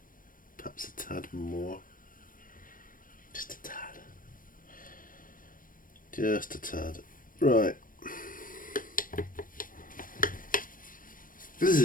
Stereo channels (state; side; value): late; right; 0.40 ms